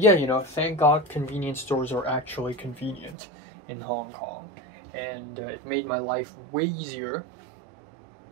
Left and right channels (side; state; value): left; drops out; at 3.2 s